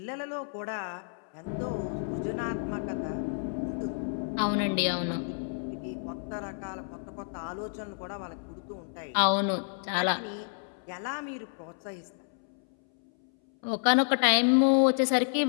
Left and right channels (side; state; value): right; silent; 58 dB below the other